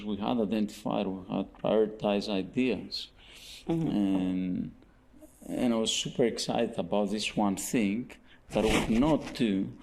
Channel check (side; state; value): both; identical; correlation 1.00